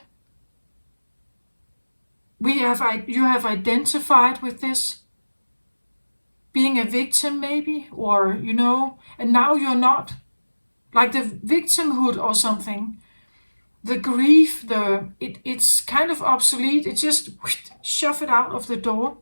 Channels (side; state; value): both; inverted; correlation -1.00